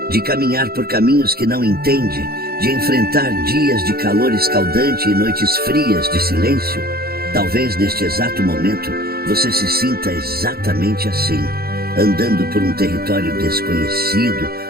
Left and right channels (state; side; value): late; left; 0.45 ms